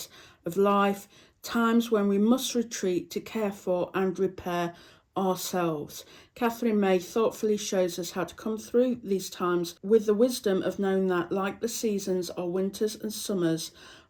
of life, times when we must retreat to care for and repair ourselves. Catherine May thoughtfully shows us how to come through these times with the wisdom of knowing that, like the seasons, are winters and summers,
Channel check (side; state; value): both; identical; correlation 1.00